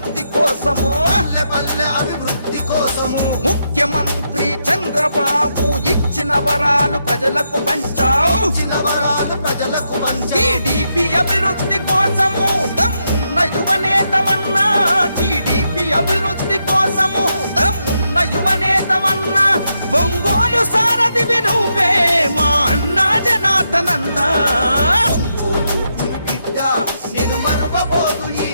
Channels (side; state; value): both; inverted; correlation -0.82